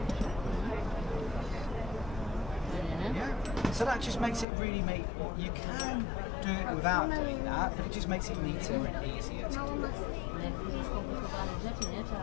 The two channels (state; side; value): drops out; right; at 4.5 s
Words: Yeah. So that just makes it really you can do it without doing that, but it just makes it neater and easier to do.